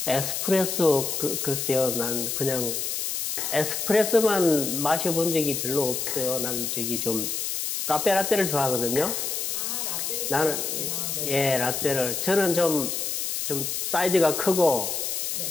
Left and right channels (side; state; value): left; noise; hiss, 2 dB below the sound